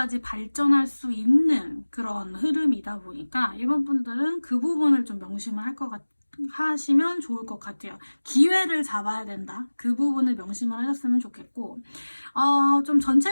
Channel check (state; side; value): inverted; both; correlation -1.00